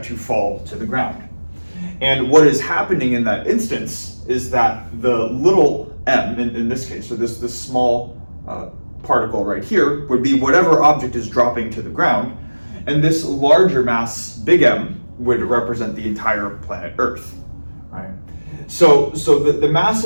to fall to the ground. And what is happening in that instance is that the little m, in this case, so this small particle right here, would be whatever object is dropping to the ground, and this larger mass, big M, would represent the entire planet Earth. Right? So the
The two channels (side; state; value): both; inverted; correlation -1.00